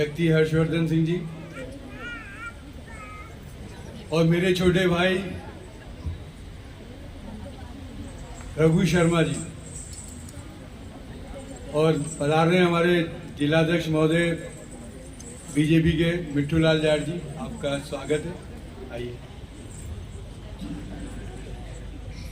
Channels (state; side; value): identical; both; correlation 1.00